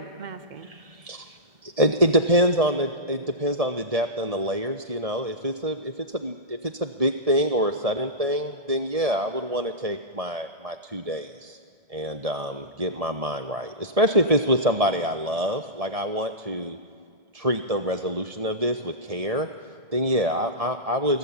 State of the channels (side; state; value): left; late; 1.7 ms